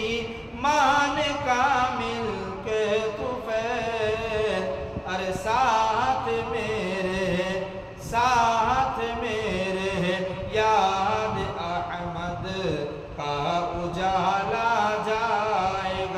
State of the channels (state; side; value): identical; both; correlation 1.00